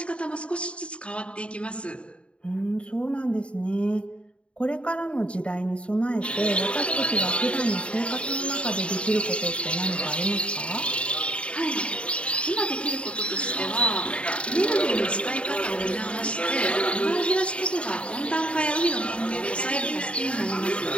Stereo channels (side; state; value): right; late; 0.059 ms